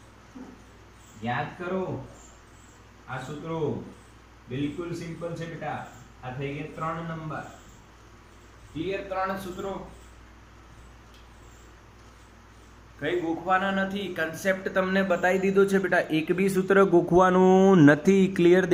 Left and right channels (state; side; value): identical; both; correlation 1.00